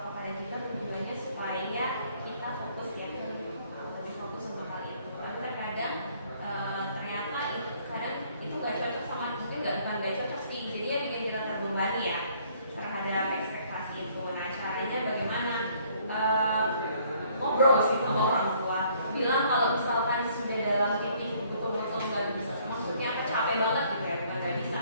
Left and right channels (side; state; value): both; inverted; correlation -0.62